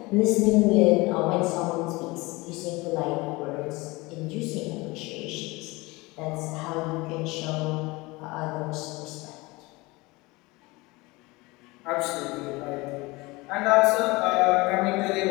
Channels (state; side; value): quieter; right; 23.1 dB